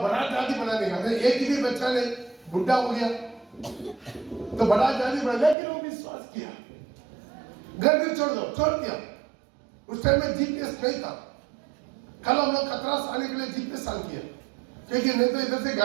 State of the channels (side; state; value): left; drops out; at 5.6 s